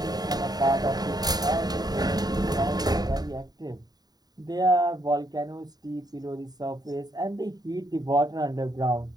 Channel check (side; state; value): left; late; 0.19 ms